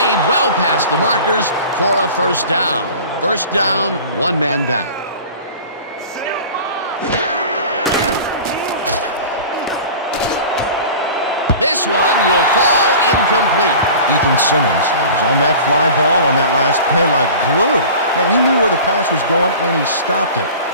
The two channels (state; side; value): inverted; both; correlation -0.39